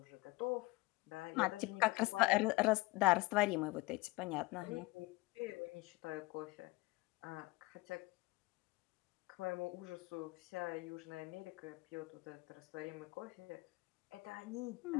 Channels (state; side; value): quieter; right; 22.3 dB